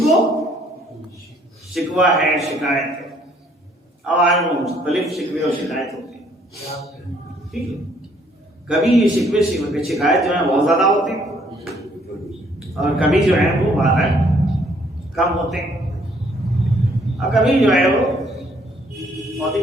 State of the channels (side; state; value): both; normal; correlation 0.64